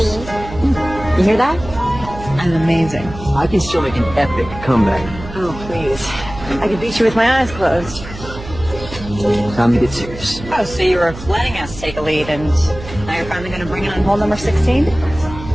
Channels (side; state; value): right; noise; hum, 13 dB below the sound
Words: You hear that? I'm amazing. I can still make an epic comeback. Oh, please. I could beat you with my eyes closed. Time to get serious. Oh, so you were letting us take a lead, and now you're finally going to bring it on hole number 16?